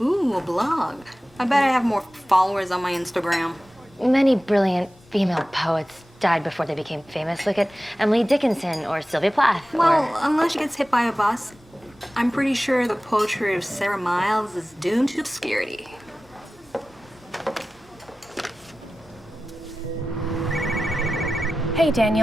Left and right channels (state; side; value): normal; both; correlation 0.96